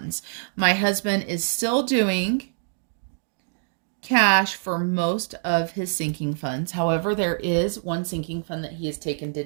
My husband is still doing cash for most of his sinking funds. However, there is one sinking fund that he has taken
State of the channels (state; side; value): silent; left; digital silence